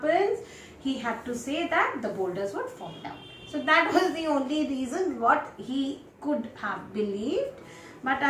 He had to say that the boulders would fall down. So that was the only reason what he could have believed, but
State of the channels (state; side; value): identical; both; correlation 1.00